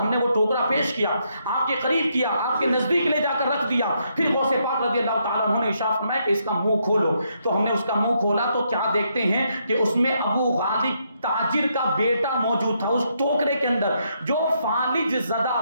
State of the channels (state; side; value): inverted; both; correlation -0.76